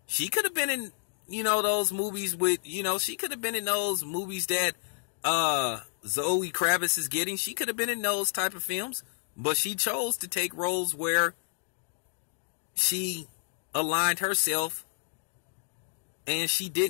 She could have been in, you know, those movies with, you know, she could have been in those movies that Zoe Kravitz is getting. She could have been in those type of films. But she chose to take roles where she aligned herself and she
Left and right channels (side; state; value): right; silent; digital silence